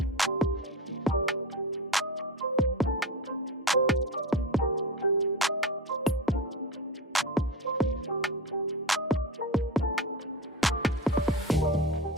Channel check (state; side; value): normal; both; correlation 0.26